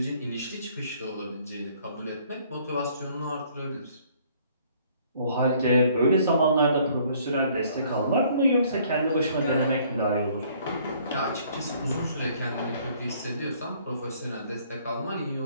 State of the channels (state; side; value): inverted; both; correlation -0.61